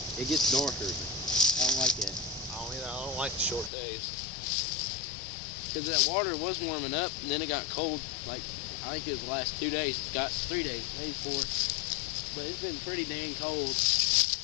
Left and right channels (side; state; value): right; drops out; at 3.7 s